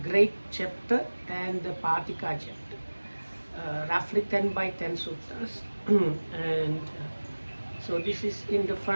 great chapter, and the Patika chapter. Roughly 10 by 10 suttas. And so this is in the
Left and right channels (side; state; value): both; inverted; correlation -1.00